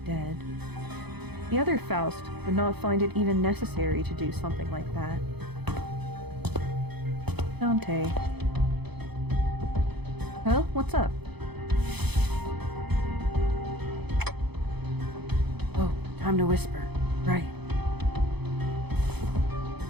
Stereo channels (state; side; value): late; left; 0.98 ms